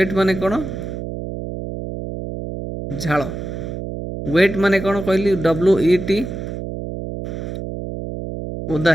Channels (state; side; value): noise; right; hum, 7 dB below the sound